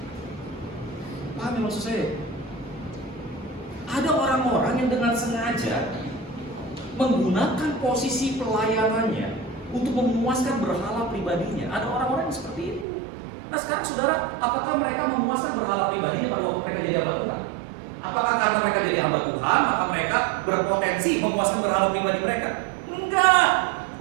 Paham ya maksud saya? Ada orang-orang yang dengan sengaja menggunakan posisi pelayanannya untuk memuaskan berhala pribadinya. Ada orang-orang yang seperti itu. Nah sekarang saudara, apakah mereka memuaskan berhala pribadinya pada waktu mereka jadi hamba Tuhan? Apakah karena mereka jadi hamba Tuhan, maka mereka berpotensi memuaskan berhala pribadi mereka? Enggak.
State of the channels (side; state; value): left; drops out; at 12.9 s